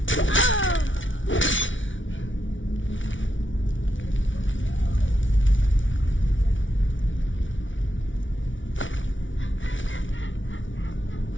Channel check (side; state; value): right; late; 0.56 ms